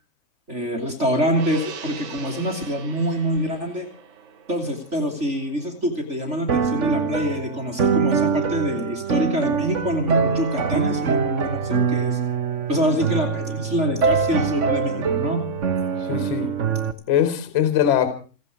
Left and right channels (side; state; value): left; late; 3.4 ms